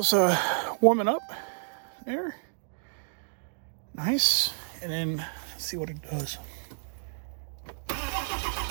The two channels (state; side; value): silent; left; digital silence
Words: warming up there. Nice. And then let's see what it does.